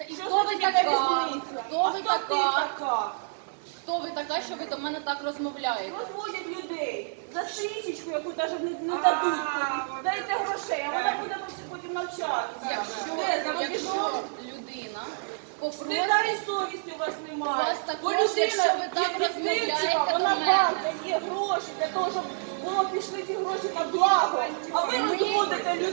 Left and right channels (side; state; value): left; silent; digital silence